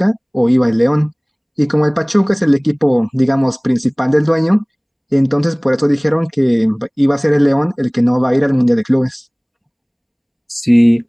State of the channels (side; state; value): both; identical; correlation 1.00